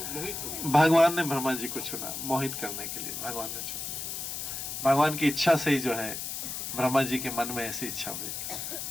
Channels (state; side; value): noise; left; hiss, 5 dB below the sound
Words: हो गए? भगवान ने ब्रह्मा जी को चुना मोहित करने के लिए, भगवान ने चुना। भगवान की इच्छा से ही जो है ब्रह्मा जी के मन में ऐसी इच्छा हुई,